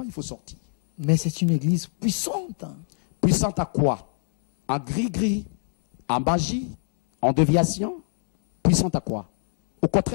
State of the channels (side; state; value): right; silent; 63 dB below the other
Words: il faut sortir. Mais c'est une église puissante. Puissante à quoi? En gris-gris, en magie, en déviation. Puissante à quoi? Au